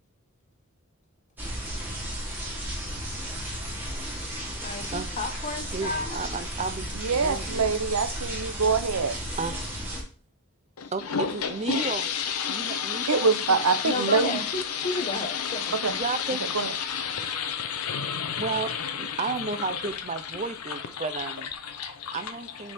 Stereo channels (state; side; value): normal; both; correlation -0.16